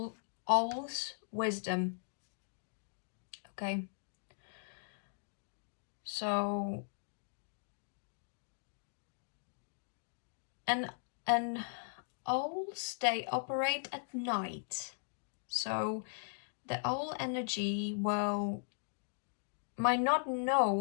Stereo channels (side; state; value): right; silent; digital silence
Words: wisdom. Okay, so and owls, they operate at night, so the owl energy might